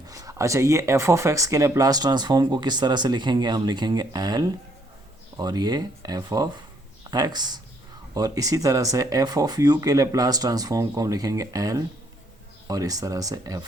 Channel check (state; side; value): normal; both; correlation 0.68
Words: अच्छा, ये एफ ऑफ एक्स के लेप्लास ट्रांसफॉर्म को किस तरह से लिखेंगे? हम लिखेंगे एल और ये एफ ऑफ एक्स, और इसी तरह से एफ ऑफ यू के लेप्लास ट्रांसफॉर्म को हम लिखेंगे एल और इस तरह से